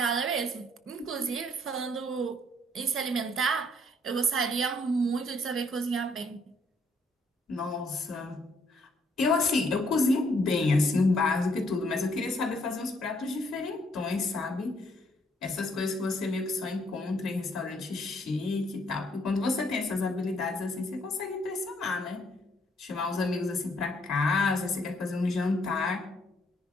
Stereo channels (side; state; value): both; normal; correlation 0.68